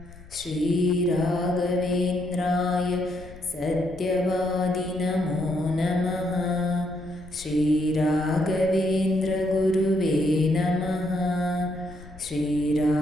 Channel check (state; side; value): noise; left; rumble, 19 dB below the sound